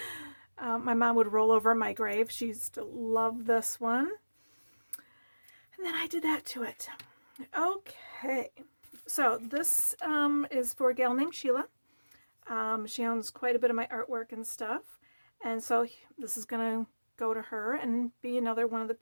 My mom would roll over my grave. She used to love this one. And then I did that to it. Okay, so this is for a gal named Sheila. She owns quite a bit of my artwork and stuff, and so this is going to go to her and be another one of the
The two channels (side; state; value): both; inverted; correlation -1.00